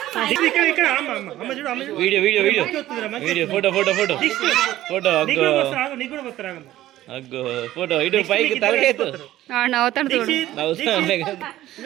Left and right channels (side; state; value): left; quieter; 14.4 dB